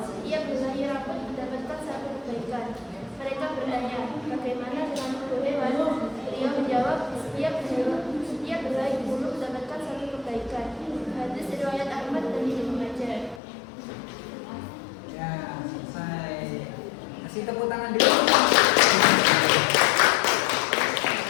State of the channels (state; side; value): drops out; right; at 13.4 s